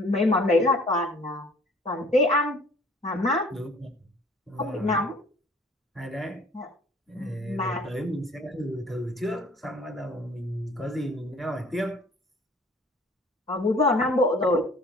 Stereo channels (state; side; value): normal; both; correlation 0.53